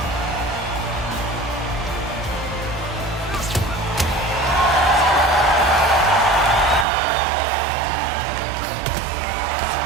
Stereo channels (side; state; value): left; drops out; at 6.9 s